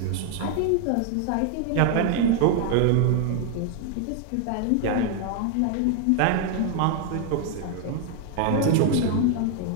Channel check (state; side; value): different; both; correlation 0.00